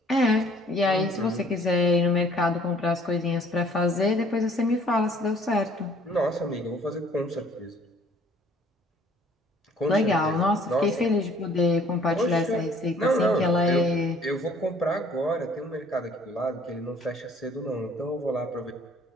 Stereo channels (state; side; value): normal; both; correlation 0.57